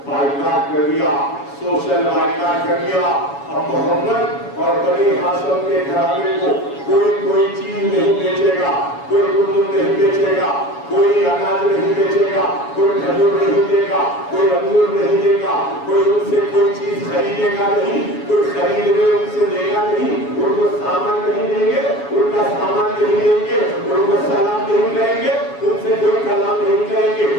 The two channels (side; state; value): right; late; 7.1 ms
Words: بائیکاٹ کر دیا، سوشل بائیکاٹ کر دیا۔ اب محمد اور بنی ہاشم کے گھرانے کو کوئی چیز نہیں بیچے گا، کوئی گندم نہیں بیچے گا، کوئی اناج نہیں بیچے گا، کوئی کھجور نہیں دے گا، کوئی انگور نہیں دے گا، کوئی ان سے کوئی چیز خریدے گا نہیں، کوئی خرید لے ان سے دے گا نہیں، ان کو سامان نہیں دیں گے، ان کا سامان نہیں دیں گے، ان کو سلام نہیں کریں گے، ان سے کوئی کلام نہیں کریں گے،